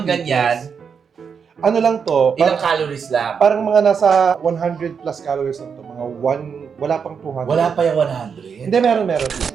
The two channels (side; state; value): left; quieter; 6.5 dB